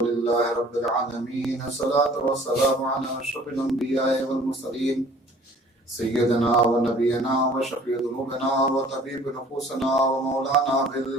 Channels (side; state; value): both; normal; correlation 0.52